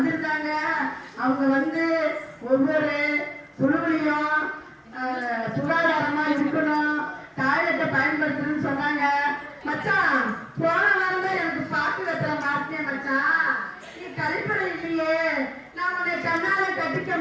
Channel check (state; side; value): identical; both; correlation 1.00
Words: அவங்க வந்து ஒவ்வொரு குழுவிலையும் சுகாதாரமா இருக்கணும், டாய்லெட்டை பயன்படுத்தணும்னு சொன்னாங்க. மச்சான் போன வாரம் தான் எனக்கு பாக்கு கட்டுற மாட்டேன் மச்சான். நீ கழிப்பறை இல்லையே, நான் உன்னை கண்ணால கட்டிக்க